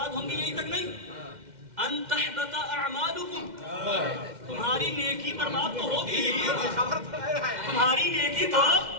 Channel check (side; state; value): left; late; 2.1 ms